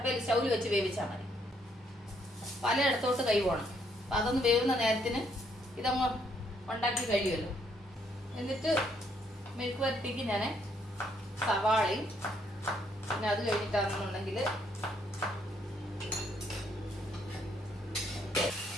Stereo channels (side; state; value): both; normal; correlation 0.71